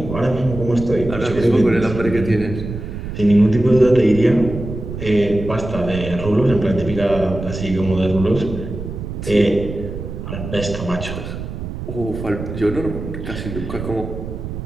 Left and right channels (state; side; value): noise; right; rumble, 8 dB below the sound